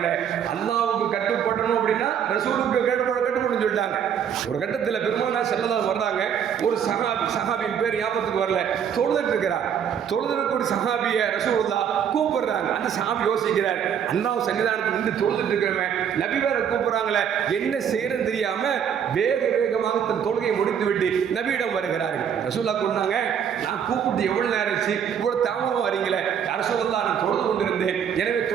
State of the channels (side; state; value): left; quieter; 8.3 dB